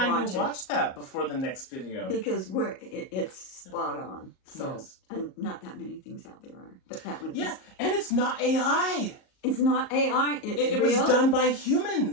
to watch that before the next video. Because it's spot on. So, and not that many things out there are. But that one is. And it's not AI. It's not AI. It was done by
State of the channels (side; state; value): right; late; 38 ms